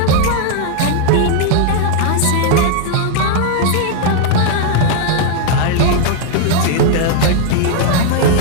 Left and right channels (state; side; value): different; both; correlation 0.00